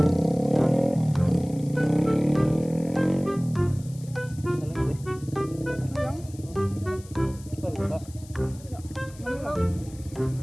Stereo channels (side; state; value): left; noise; hiss, 22 dB below the sound